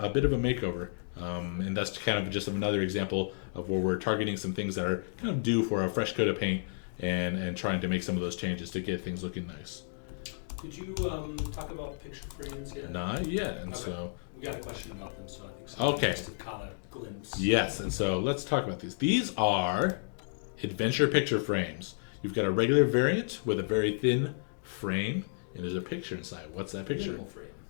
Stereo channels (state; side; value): silent; right; digital silence